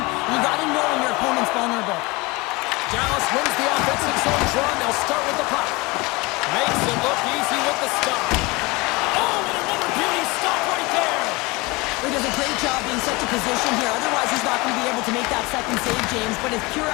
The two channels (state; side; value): quieter; right; 24.3 dB